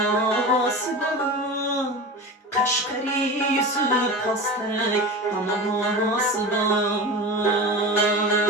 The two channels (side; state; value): both; normal; correlation 0.29